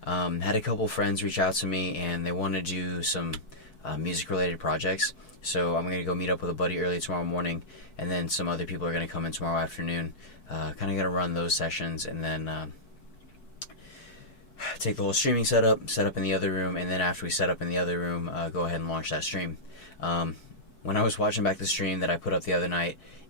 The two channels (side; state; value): right; late; 4.6 ms